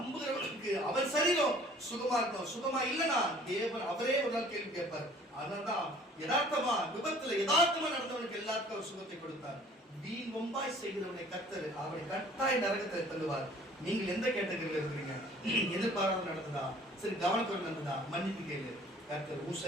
அவர் சரீரம் சுகமா இருக்கணும். சுகமா இல்லனா தேவன் அவரே ஒரு நாள் கேள்வி கேட்பார். அதனால்தான் யதார்த்தமா விபத்துல யதார்த்தமா நடந்தவனுக்கு எல்லாருக்கும் அவர் சுகத்தை கொடுத்தார். வீண் வம்பாய் செய்கிறவனை கர்த்தர் அவனை கட்டாய நரகத்தை தள்ளுவார். நீங்கள் எந்த கேட்டகரியில இருக்கிறீங்க? எதிர்பாராமல் நடந்ததா, சரி கவனத்தோடு நடந்ததா, மன்னிப்பு கேளு. கர்த்தர் உன்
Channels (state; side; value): normal; both; correlation 0.52